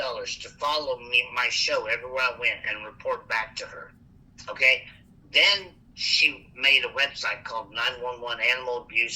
to follow me, my show everywhere I went, and report back to her. Okay? Then she made a website called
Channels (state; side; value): identical; both; correlation 1.00